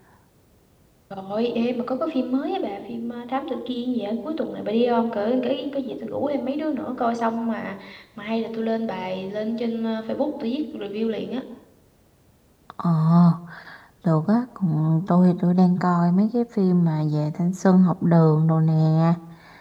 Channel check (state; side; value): identical; both; correlation 1.00